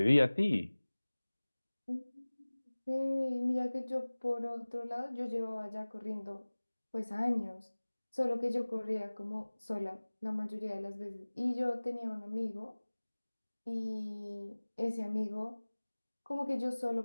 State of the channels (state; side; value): inverted; both; correlation -1.00